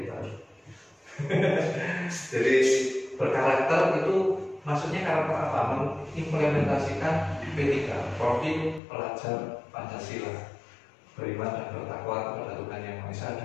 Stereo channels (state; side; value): drops out; right; at 8.8 s